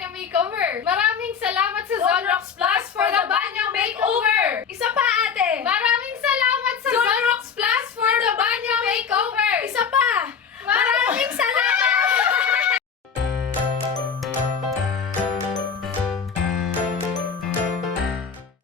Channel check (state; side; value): quieter; right; 6.5 dB